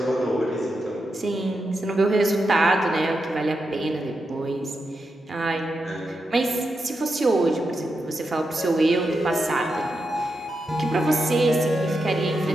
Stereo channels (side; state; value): both; normal; correlation 0.87